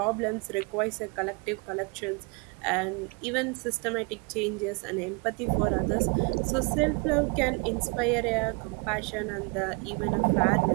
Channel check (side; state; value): left; quieter; 32.3 dB